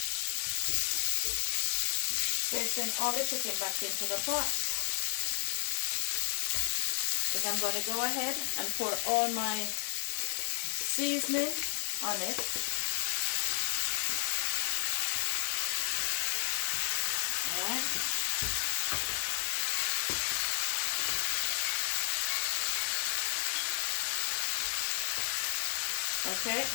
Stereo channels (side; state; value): right; silent; 56 dB below the other